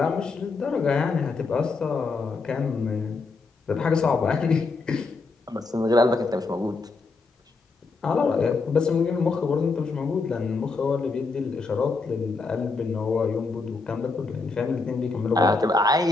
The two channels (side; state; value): right; quieter; 4.0 dB